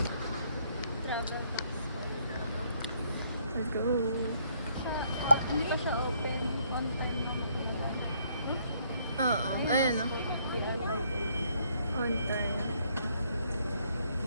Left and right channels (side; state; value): both; inverted; correlation -0.68